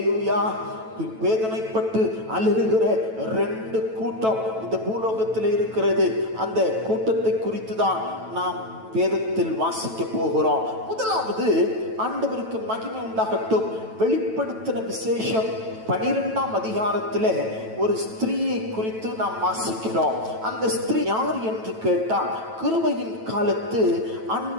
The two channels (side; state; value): left; late; 9.1 ms